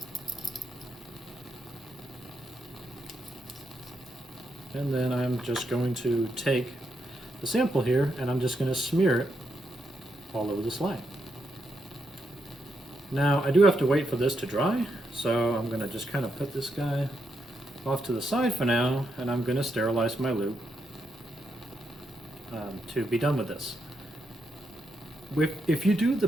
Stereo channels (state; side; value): normal; both; correlation 0.81